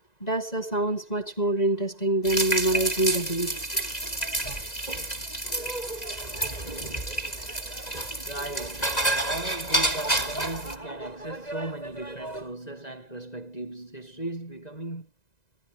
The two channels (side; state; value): right; late; 1.9 ms